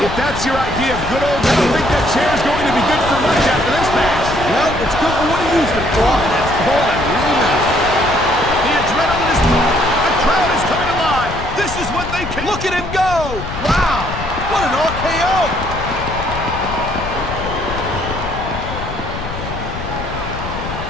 If that's your idea of good old, I don't think that chair is going to be good for much after this match. Well, it's good for what he used it for, and that's all that really matters. The adrenaline is pumping. The crowd is coming alive. This is what they can. Look at him go! Wow! What an RKO!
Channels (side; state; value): left; noise; rumble, 8 dB below the sound